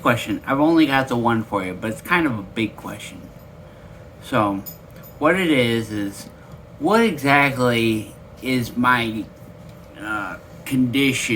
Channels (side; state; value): both; identical; correlation 1.00